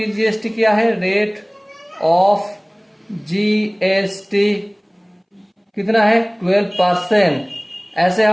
क्या है? रेट ऑफ जीएसटी कितना है? 12%। ऐसे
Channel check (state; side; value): identical; both; correlation 1.00